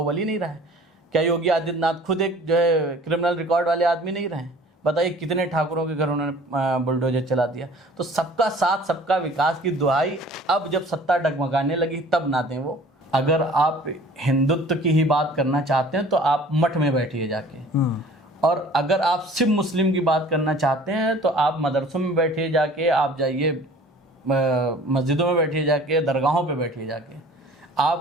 नहीं रहा है? क्या योगी आदित्यनाथ खुद एक जो है क्रिमिनल रिकॉर्ड वाले आदमी नहीं रहे? बताइए कितने ठाकुरों के घर उन्होंने बुलडोजर चला दिया। तो सबका साथ सबका विकास की दुहाई अब जब सत्ता डगमगाने लगी तब ना दें वो। अगर आप हिंदुत्व की ही बात करना चाहते हैं तो आप मठ में बैठिए जाके, और अगर आप सिर्फ मुस्लिम की बात करना चाहते हैं तो आप मदरसों में बैठिए जाके, आप जाइए मस्जिदों में बैठिए जाके, दरगाहों पे बैठिए जाके।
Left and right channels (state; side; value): normal; both; correlation 0.48